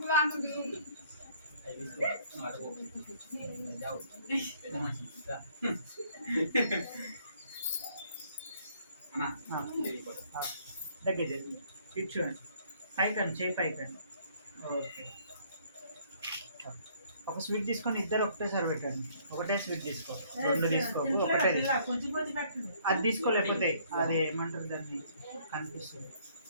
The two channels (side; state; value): both; inverted; correlation -0.62